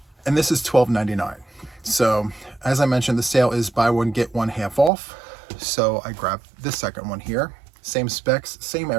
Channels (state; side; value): drops out; left; at 4.9 s